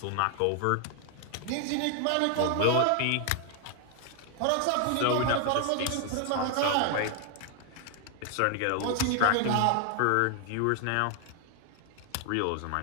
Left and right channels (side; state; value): both; different; correlation 0.00